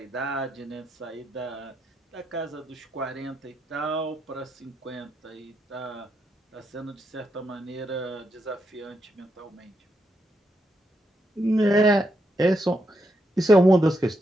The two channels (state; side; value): normal; both; correlation 0.81